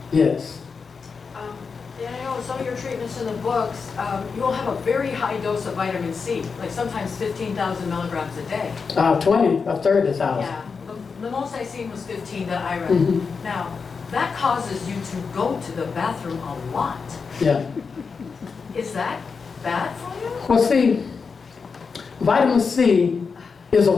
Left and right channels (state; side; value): quieter; right; 5.2 dB